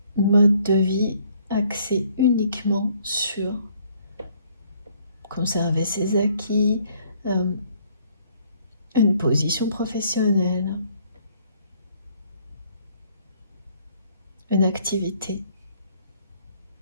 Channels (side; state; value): both; inverted; correlation -0.63